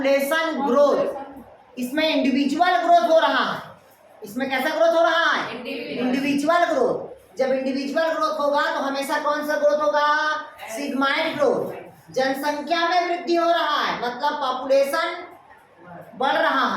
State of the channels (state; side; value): identical; both; correlation 1.00